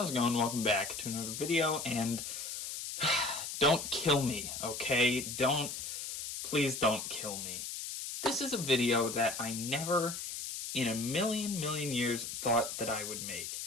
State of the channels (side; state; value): left; noise; hiss, 6 dB below the sound